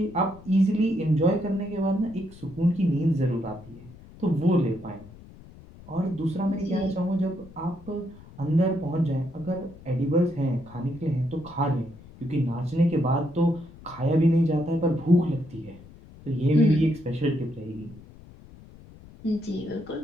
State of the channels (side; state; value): left; noise; rumble, 20 dB below the sound